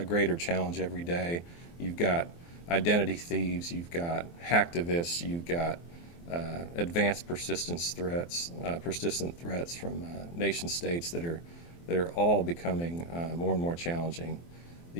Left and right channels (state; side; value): late; right; 23 ms